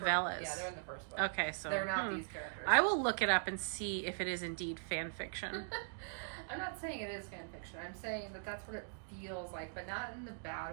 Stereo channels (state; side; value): silent; left; digital silence